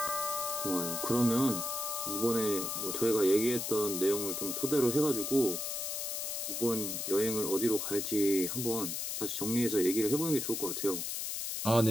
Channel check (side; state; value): left; noise; hiss, 3 dB below the sound